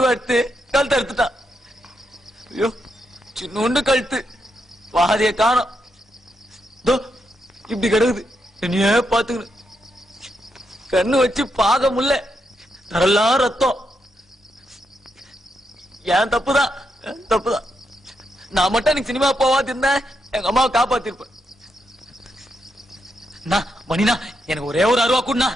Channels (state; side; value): normal; both; correlation 0.82